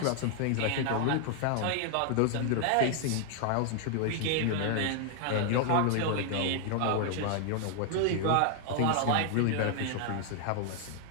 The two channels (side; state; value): both; different; correlation 0.00